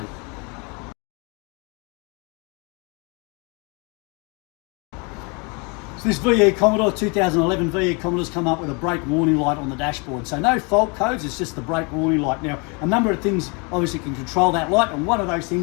So this VE Commodore, 2011 VE Commodore's come up with a brake warning light on the dashboard. So no fault codes, it's just the brake warning light. Now, a number of things obviously can control that light, and one of those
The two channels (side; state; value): right; quieter; 31.9 dB